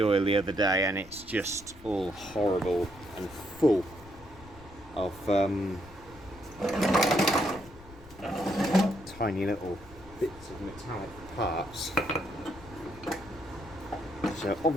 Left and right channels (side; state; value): left; noise; rumble, 20 dB below the sound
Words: oil the other day, and it's just all horrible and full of tiny little bits of metallic parts. So